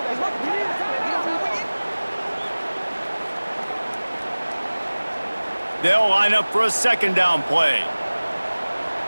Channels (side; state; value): both; inverted; correlation -1.00